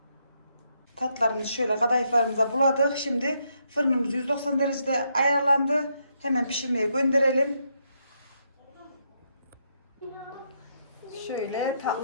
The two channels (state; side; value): inverted; both; correlation -0.78